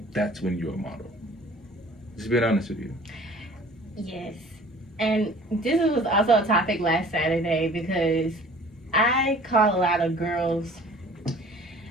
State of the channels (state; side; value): normal; both; correlation 0.49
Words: that's when you're a model. Just being honest with you. Yes. And this was also a topic last Saturday because I call a lot of girls.